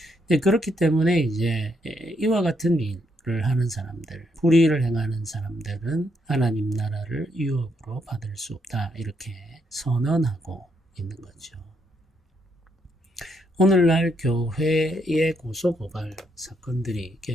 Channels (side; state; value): both; normal; correlation 0.76